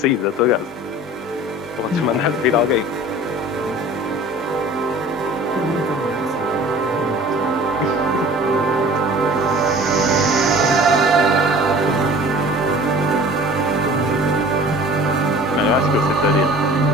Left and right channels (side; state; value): both; normal; correlation 0.45